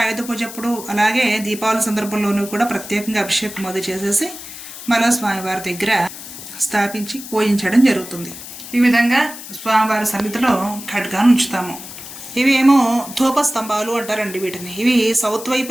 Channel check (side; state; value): left; noise; hiss, 13 dB below the sound